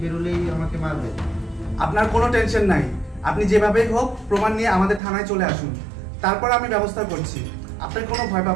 বেরোলেই আমাকে মারবে। আপনার কোনো টেনশন নাই, আপনি যেভাবেই হোক প্রমাণ নিয়ে আমাদের থানায় চলে আসুন, তারপর আমি ব্যবস্থা করছি। আপনার কোনো ভয়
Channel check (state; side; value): drops out; left; at 5.0 s